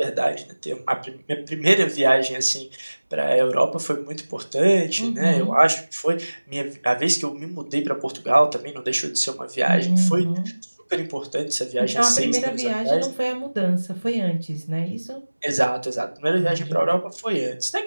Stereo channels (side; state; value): both; inverted; correlation -1.00